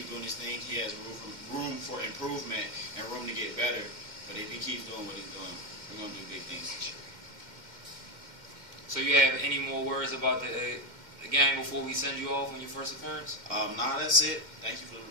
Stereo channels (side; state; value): left; late; 2.1 ms